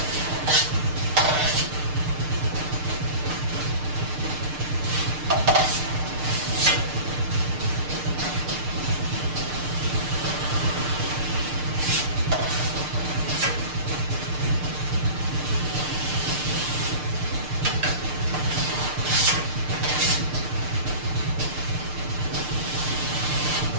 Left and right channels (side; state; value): left; late; 6.6 ms